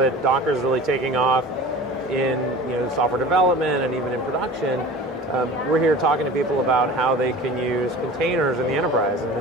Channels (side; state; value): both; normal; correlation 0.38